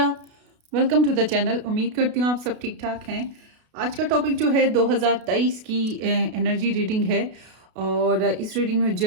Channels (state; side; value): late; left; 32 ms